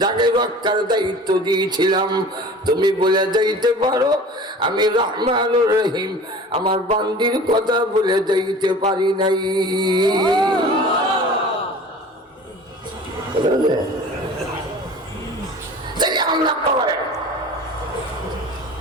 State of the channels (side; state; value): both; normal; correlation 0.41